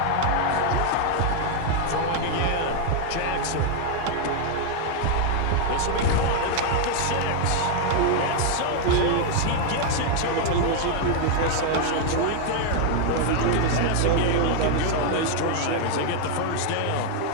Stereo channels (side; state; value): both; different; correlation 0.00